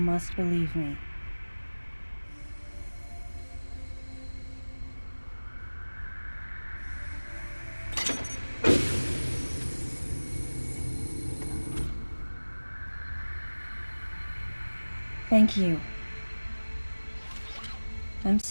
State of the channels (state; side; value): inverted; both; correlation -1.00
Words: believe me. Thank you. I'm